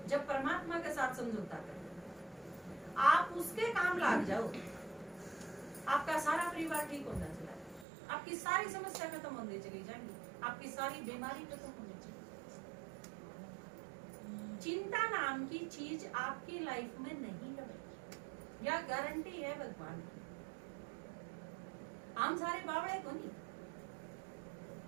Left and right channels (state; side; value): drops out; left; at 7.9 s